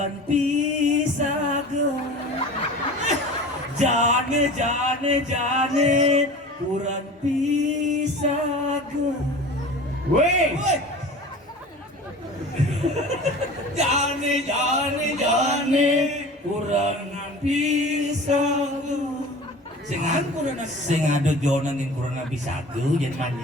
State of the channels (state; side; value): normal; both; correlation 0.38